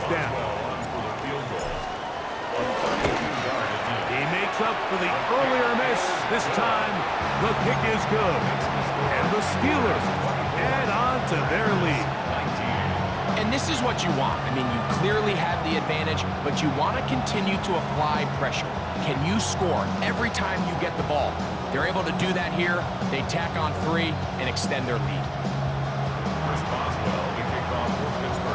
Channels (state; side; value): identical; both; correlation 1.00